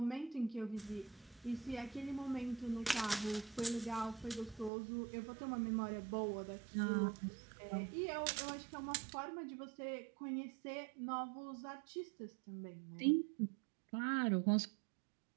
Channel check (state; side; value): drops out; left; at 4.7 s